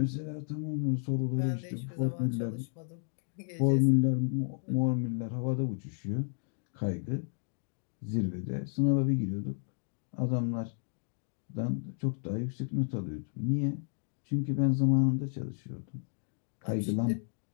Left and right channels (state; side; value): silent; right; 56 dB below the other